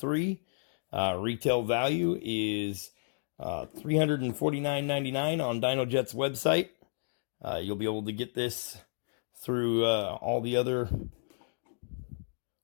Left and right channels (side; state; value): right; silent; digital silence